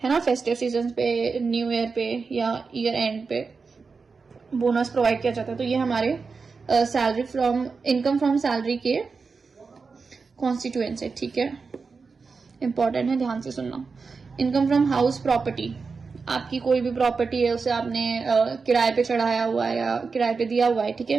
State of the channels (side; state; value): left; quieter; 4.7 dB